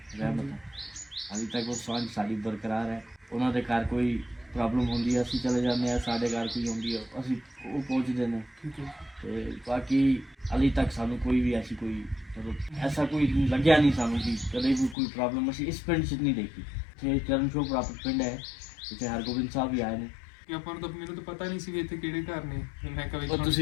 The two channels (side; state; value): right; drops out; at 15.0 s